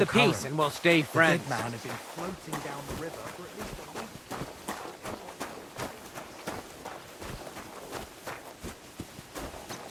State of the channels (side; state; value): both; identical; correlation 1.00